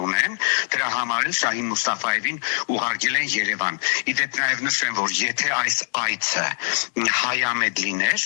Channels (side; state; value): right; silent; 59 dB below the other